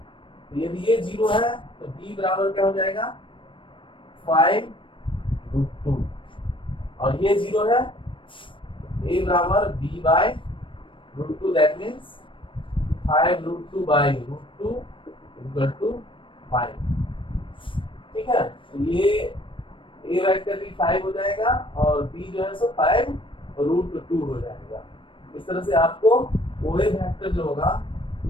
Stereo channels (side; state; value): right; late; 0.25 ms